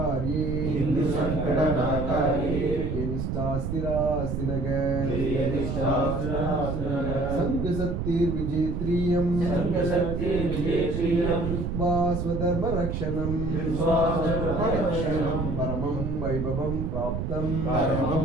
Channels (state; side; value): noise; right; rumble, 2 dB below the sound